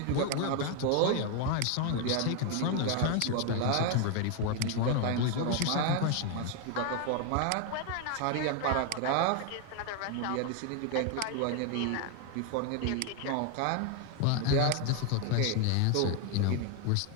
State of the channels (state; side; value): different; both; correlation 0.01